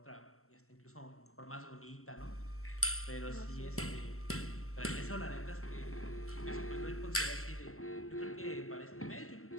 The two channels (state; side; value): late; right; 0.63 ms